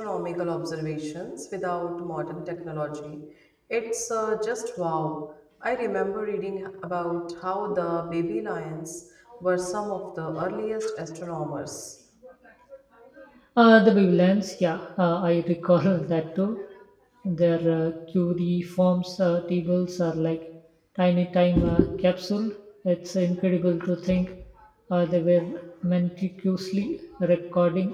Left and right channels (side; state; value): both; identical; correlation 1.00